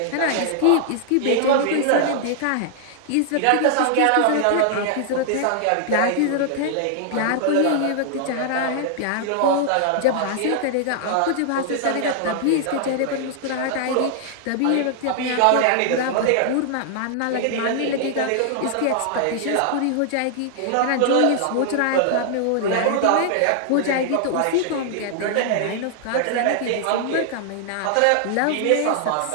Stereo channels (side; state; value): both; different; correlation -0.01